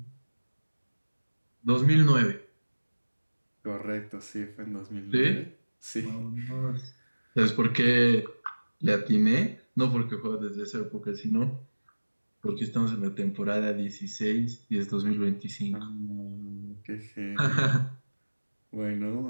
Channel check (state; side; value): inverted; both; correlation -1.00